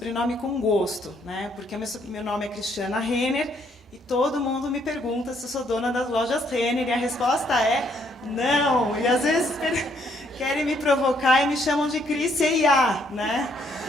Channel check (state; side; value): normal; both; correlation 0.69